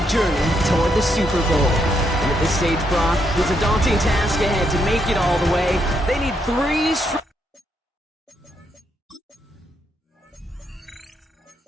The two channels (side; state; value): both; normal; correlation 0.77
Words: journey toward the Super Bowl. And at this stage, Brock, it's a daunting task ahead to make it all the way. They need three straight.